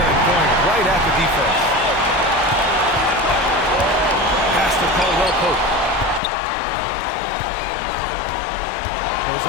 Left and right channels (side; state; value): right; drops out; at 6.2 s